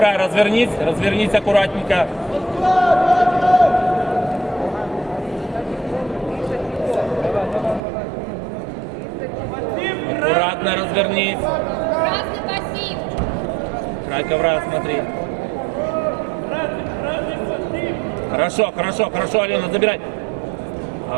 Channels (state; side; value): drops out; left; at 7.8 s